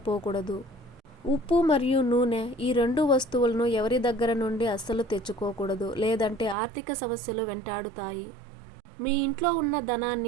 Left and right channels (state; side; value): drops out; left; at 6.6 s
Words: ఉప్పు మరియు నూనె ఈ 2 వస్తువులను ఎవరి దగ్గర నుండి అస్సలు తెచ్చుకోకూడదు. లేదంటే ఆర్థిక సమస్యలు వెంటాడుతాయి. మీ ఇంట్లో ఉన్న